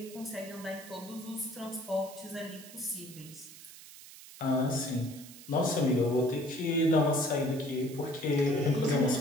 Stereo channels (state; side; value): noise; right; hiss, 17 dB below the sound